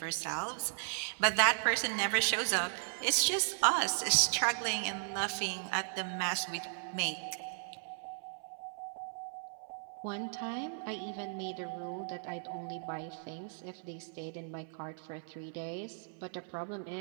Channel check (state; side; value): silent; left; 54 dB below the other